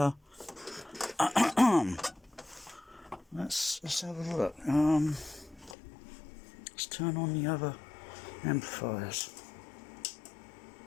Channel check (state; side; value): drops out; right; at 5.8 s